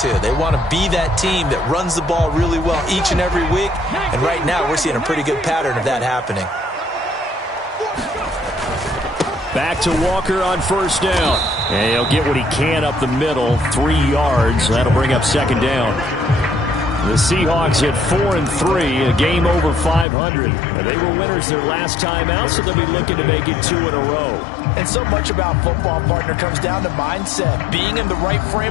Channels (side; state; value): right; drops out; at 20.1 s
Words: They want to be that team that runs the ball really well each and every week. And right now, we're seeing a pretty good pattern of that happening. Back to Walker on first down. And he'll get what he can up the middle, 3 yards. That'll bring up second down. The Seahawks at 4-3, a game over 500. They were winners their last time out, so they'll be looking to make it 2 in a row. And so much about football, partner, comes down to mindset. Being in the right